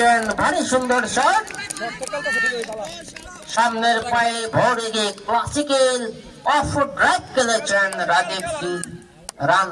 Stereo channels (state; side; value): identical; both; correlation 1.00